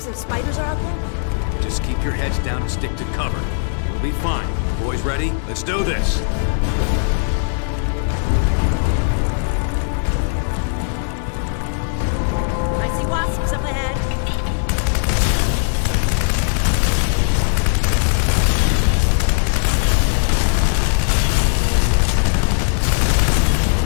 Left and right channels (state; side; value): silent; right; digital silence